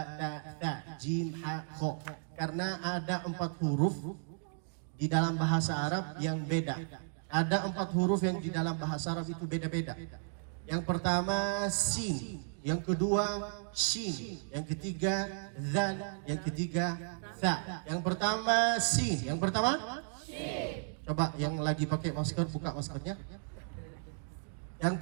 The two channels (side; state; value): left; silent; digital silence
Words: ta, jim, ha, kho. Karena ada 4 huruf di dalam bahasa Arab yang beda. Ada 4 huruf yang di dalam bahasa Arab itu beda-beda. Yang pertama sin, yang kedua shin, yang ketiga dzal, yang ketiga tha. Yang pertama sin, yang pertama shin. Coba yang lagi pakai masker buka maskernya. Yang